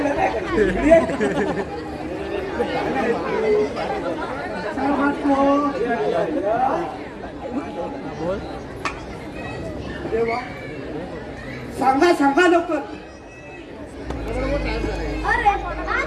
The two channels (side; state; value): both; identical; correlation 1.00